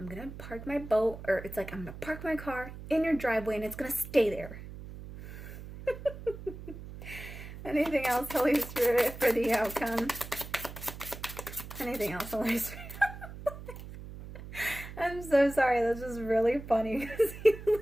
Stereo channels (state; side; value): noise; right; hum, 12 dB below the sound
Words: going to park my boat, or it's like, I'm going to park my car in your driveway, and it's going to stay there. Anything else, Holy Spirit, for the outcome? Anything else, Holy Spirit? I'm so sorry, that's just really funny, because he